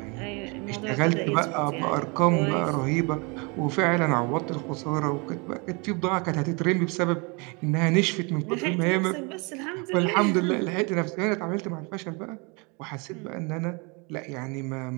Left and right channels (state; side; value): quieter; left; 30.5 dB